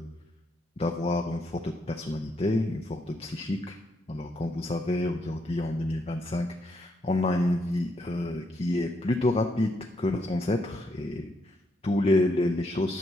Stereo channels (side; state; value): both; normal; correlation 0.77